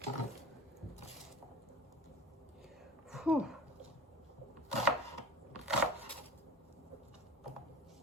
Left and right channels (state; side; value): normal; both; correlation 0.37